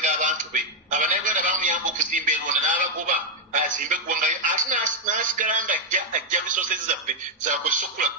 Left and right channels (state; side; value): normal; both; correlation -0.01